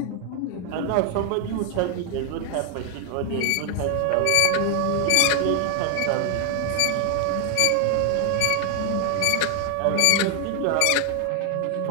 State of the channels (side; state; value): both; different; correlation 0.00